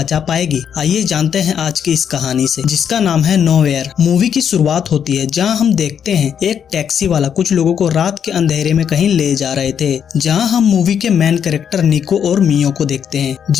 पाएगी? आइए जानते हैं आज की इस कहानी से, जिसका नाम है नोवेयर। मूवी की शुरुआत होती है जहाँ हम देखते हैं एक टैक्सी वाला कुछ लोगों को रात के अंधेरे में कहीं ले जा रहे थे, जहाँ हम मूवी के मेन कैरेक्टर निको और मियो को देखते हैं,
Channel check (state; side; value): quieter; right; 8.1 dB